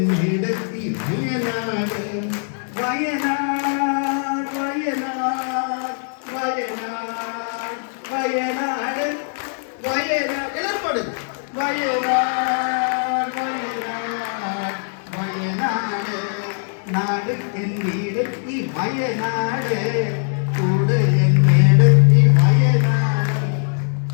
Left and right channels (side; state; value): right; silent; digital silence